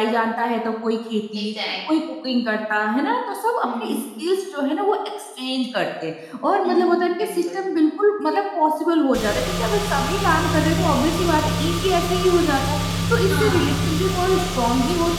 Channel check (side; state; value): both; identical; correlation 1.00